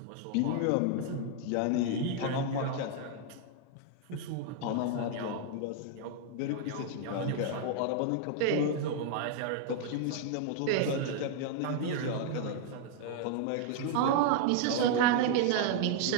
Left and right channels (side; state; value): both; different; correlation 0.00